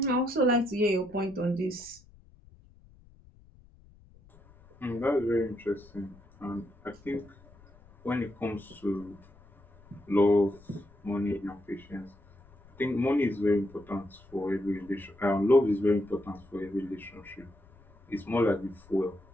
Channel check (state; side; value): noise; left; rumble, 26 dB below the sound